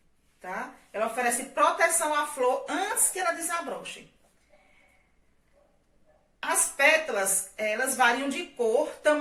tá? Ela oferece proteção à flor antes que ela desabroche. As pétalas, elas variam de cor,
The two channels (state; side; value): identical; both; correlation 1.00